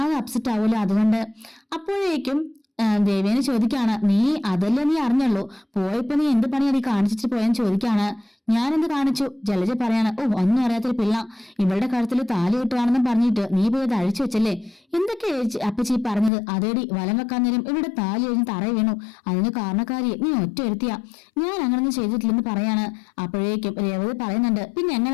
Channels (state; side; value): drops out; right; at 16.3 s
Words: അപ്സെറ്റ് ആവൂല, അതുകൊണ്ട്. അപ്പോഴേക്കും ദേവേനെ ചോദിക്കാണ്, നീ അതല്ലേ നീ അറിഞ്ഞുള്ളൂ, പോയപ്പോ നീ എന്ത് പണിയാ നീ കാണിച്ചിട്ട് പോയെന്ന് ചോദിക്കാണ്. ഞാനെന്ത് കാണിച്ചു? ജലജ പറയാണ്, ഓ ഒന്നും അറിയാത്തൊരു പിള്ള, ഇവളുടെ കഴുത്തിൽ താലി കിട്ടുവാണെന്നും പറഞ്ഞിട്ട് നീ പോയി അത് അഴിച്ചു വെച്ചല്ലേ? എന്തൊക്കെ അപ്പച്ചി പറഞ്ഞത്? അതേടി വലം വെക്കാൻ നേരം ഇവിടെ താലി കഴിഞ്ഞ് തറയി വീണു, അതിന് കാരണക്കാരി നീ ഒറ്റ എടുത്തിയാ, ഞാൻ അങ്ങനൊന്നും ചെയ്തിട്ടില്ലെന്ന് പറയാണ്. അപ്പോഴേക്കും രേവതി പറയുന്നുണ്ട്, പിന്നെ